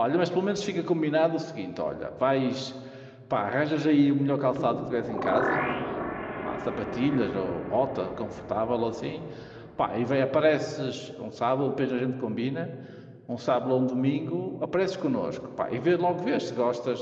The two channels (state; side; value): identical; both; correlation 1.00